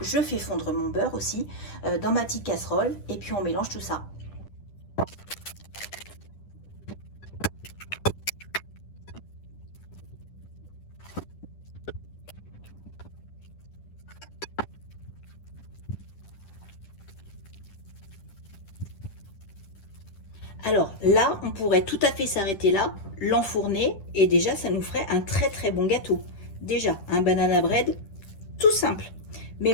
fais fondre mon beurre aussi dans ma petite casserole et puis on mélange tout ça. Alors là, on pourrait tout à fait s'arrêter là, l'enfourner et déjà, ça nous ferait un très très bon gâteau. Déjà, un banana bread tout simple. Mais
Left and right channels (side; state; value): right; late; 10 ms